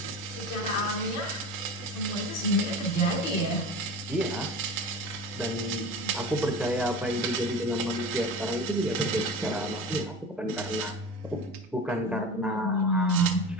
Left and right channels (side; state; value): both; normal; correlation 0.32